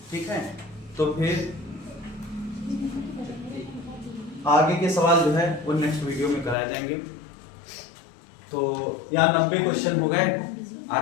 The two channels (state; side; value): drops out; right; at 6.6 s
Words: ठीक है। तो फिर आगे के सवाल जो है वो नेक्स्ट वीडियो में कराए जाएंगे। तो यहाँ 90 क्वेश्चन हो गए,